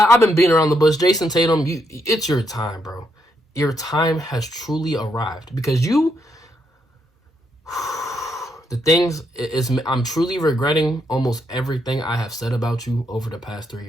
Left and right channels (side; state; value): both; normal; correlation 0.78